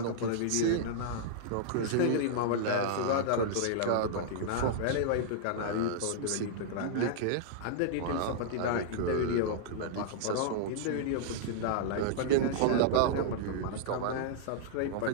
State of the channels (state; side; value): different; both; correlation -0.01